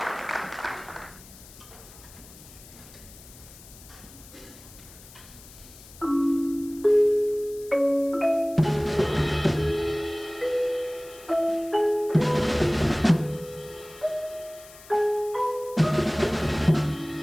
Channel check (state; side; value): noise; left; hiss, 20 dB below the sound